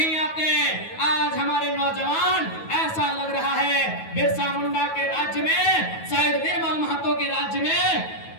आते। आज हमारे नौजवान, ऐसा लग रहा है बिरसा मुंडा के राज्य में राज्य में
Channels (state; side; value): late; right; 9.3 ms